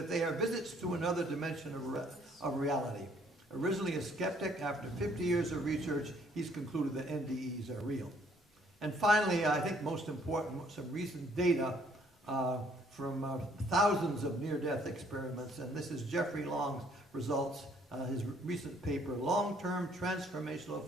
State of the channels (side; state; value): both; normal; correlation 0.63